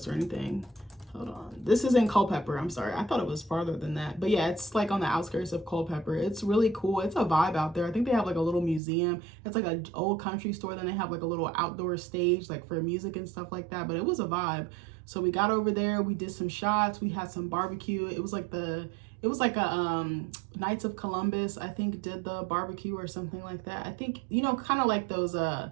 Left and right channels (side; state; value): left; drops out; at 8.8 s